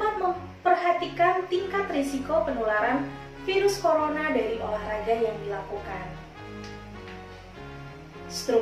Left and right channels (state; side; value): identical; both; correlation 1.00